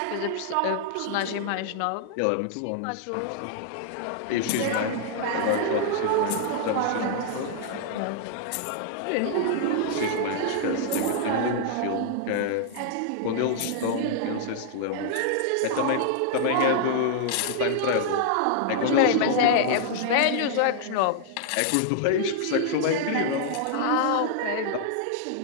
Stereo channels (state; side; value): different; both; correlation -0.01